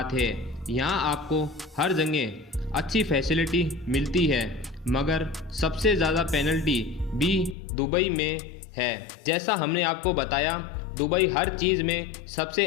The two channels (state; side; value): drops out; right; at 7.6 s